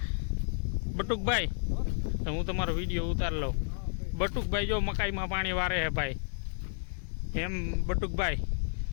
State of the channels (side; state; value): right; silent; digital silence